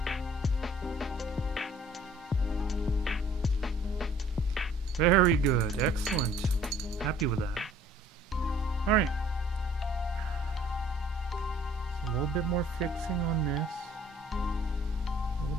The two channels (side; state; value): both; normal; correlation 0.56